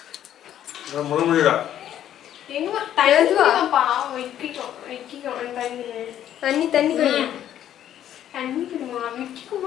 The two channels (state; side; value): quieter; right; 11.0 dB